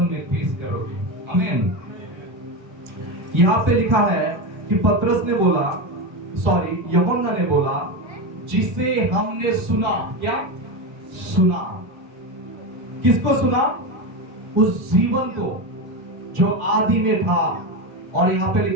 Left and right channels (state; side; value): late; left; 1.4 ms